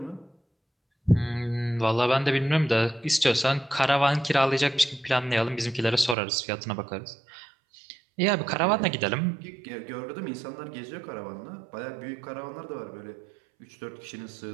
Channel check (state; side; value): drops out; left; at 6.2 s